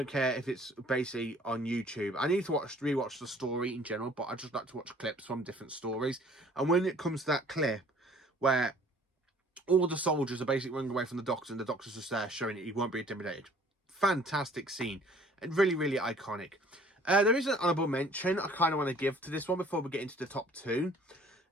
care if it's basically on YouTube. I need to rewatch the story in general, but I just like to watch clips from different stories. And when it comes to that clip where all the soldiers are basically running away from the Doctor and the Doctor's just there showing it he won't be intimidated. Fantastic scene. And really, really iconic. There is an honourable mention I kind of want to give to this one before we get into the top 2.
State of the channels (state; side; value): normal; both; correlation 0.54